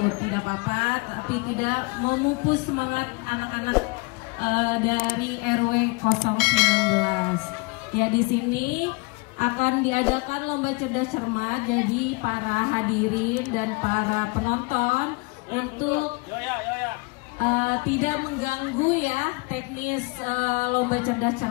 tidak apa-apa, tapi tidak memupus semangat anak-anak dari RW 019. Ya, di sini akan diadakan lomba cerdas cermat, jadi para hadirin dan para penonton untuk tidak mengganggu ya teknis lomba cerdas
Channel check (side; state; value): right; quieter; 27.9 dB